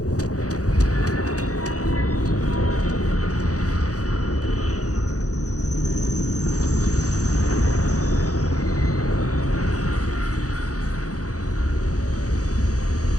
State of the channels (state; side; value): late; right; 0.67 ms